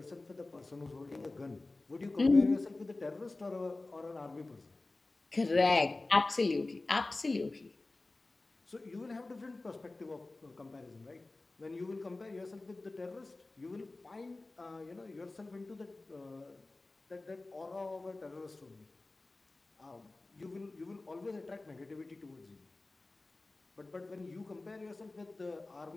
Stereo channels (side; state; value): right; quieter; 3.1 dB